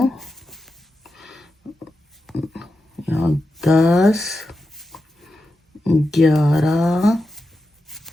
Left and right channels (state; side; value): normal; both; correlation 0.90